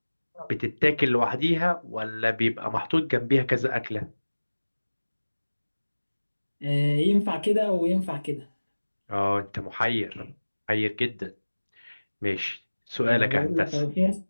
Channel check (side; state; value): both; inverted; correlation -1.00